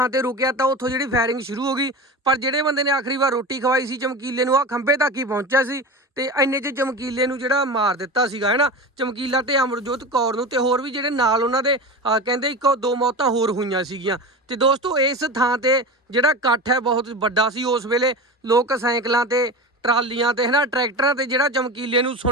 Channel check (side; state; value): both; normal; correlation 0.28